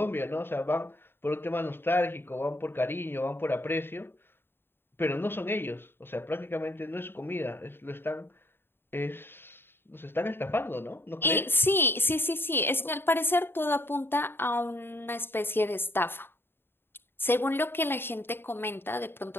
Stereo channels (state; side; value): late; right; 0.11 ms